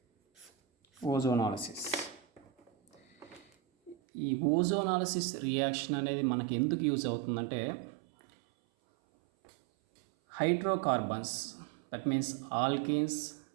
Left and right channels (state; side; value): drops out; left; at 4.0 s